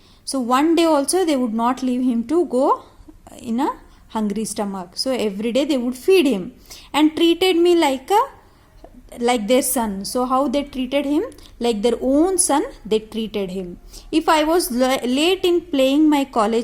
So one day also they would not leave him to go in a hungry stomach. So every day they would feed him and treated me like their son. So how they treated him? Like their own son, they treated him. If I was late in paying my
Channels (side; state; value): both; identical; correlation 1.00